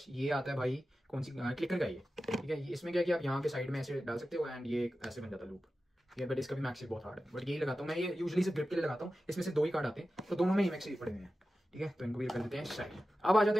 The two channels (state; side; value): normal; both; correlation 0.93